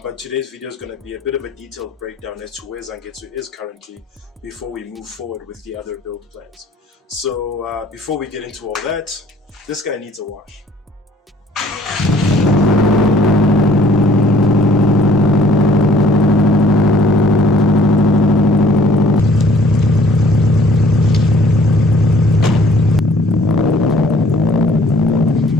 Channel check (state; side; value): normal; both; correlation 0.57